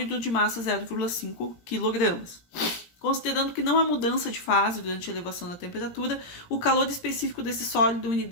de massa 0,5 kg. Considerando que não há mudança de fase durante a elevação da temperatura, o calor específico desse sólido em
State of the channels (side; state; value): right; late; 17 ms